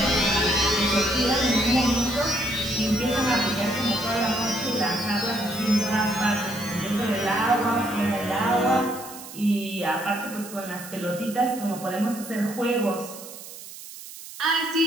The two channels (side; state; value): right; noise; hiss, 14 dB below the sound